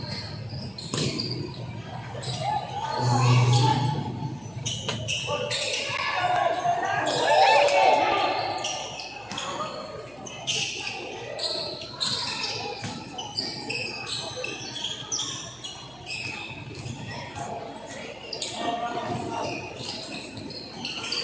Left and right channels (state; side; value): noise; right; hum, 25 dB below the sound